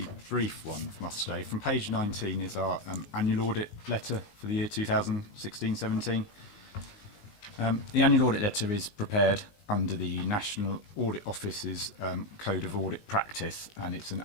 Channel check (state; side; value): late; right; 19 ms